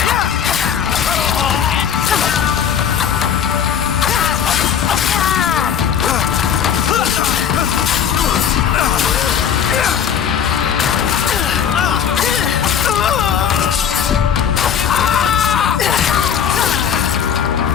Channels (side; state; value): right; quieter; 8.2 dB